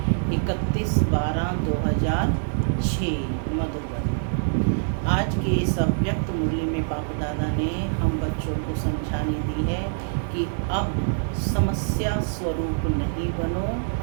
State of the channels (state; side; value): silent; left; 57 dB below the other